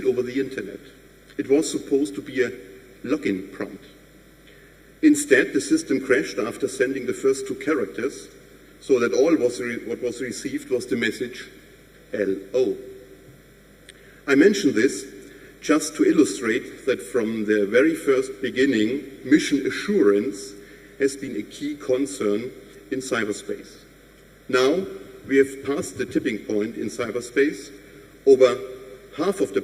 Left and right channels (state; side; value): identical; both; correlation 1.00